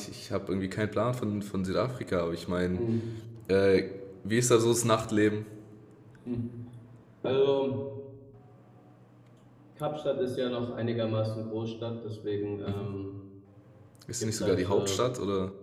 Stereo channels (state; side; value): identical; both; correlation 1.00